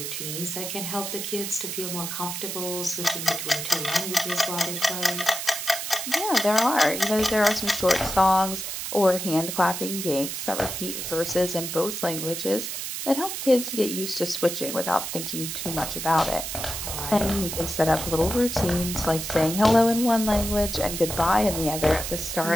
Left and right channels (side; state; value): right; noise; hiss, 5 dB below the sound